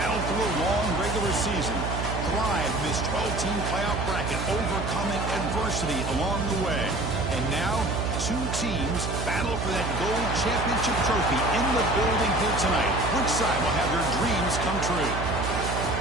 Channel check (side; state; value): right; noise; hum, 4 dB below the sound